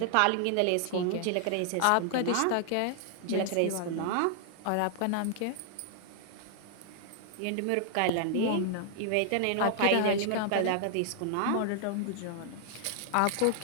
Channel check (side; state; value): both; different; correlation -0.01